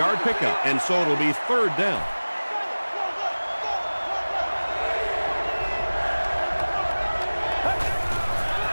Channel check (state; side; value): inverted; both; correlation -1.00